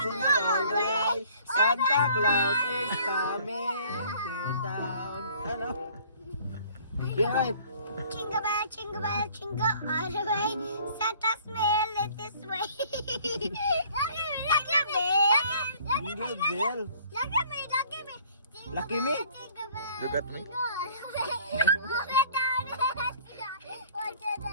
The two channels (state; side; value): inverted; both; correlation -0.55